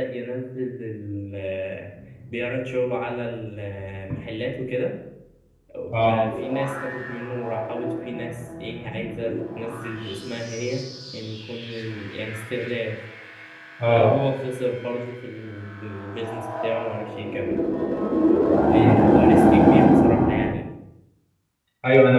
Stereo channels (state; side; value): identical; both; correlation 1.00